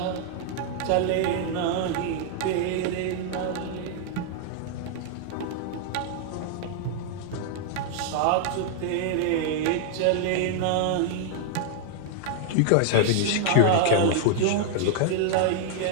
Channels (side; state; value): both; different; correlation 0.00